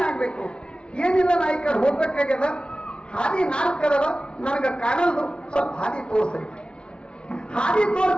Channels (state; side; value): late; right; 0.056 ms